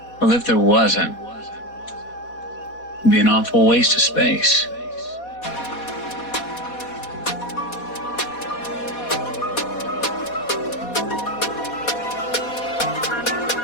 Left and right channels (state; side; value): late; right; 4.2 ms